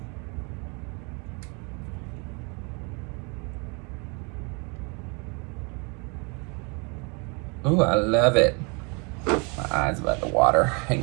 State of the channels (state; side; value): quieter; left; 32.4 dB